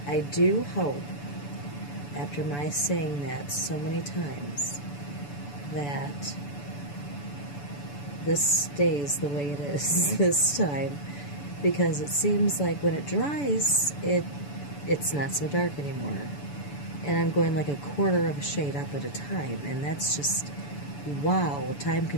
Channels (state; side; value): late; right; 6.9 ms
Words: I do hope, after my saying that so many times, that this stays the way it is this time, because it seems like when it dries, it's not so dark anymore. And I'm going like a quarter of a shade up at a time, and that's just, wow, time